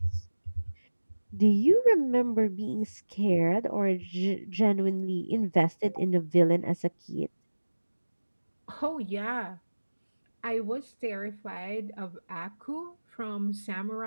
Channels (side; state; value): both; inverted; correlation -1.00